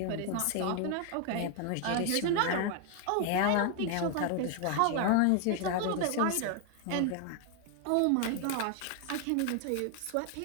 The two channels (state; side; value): different; both; correlation 0.00